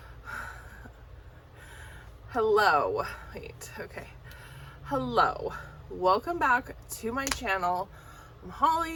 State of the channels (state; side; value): identical; both; correlation 1.00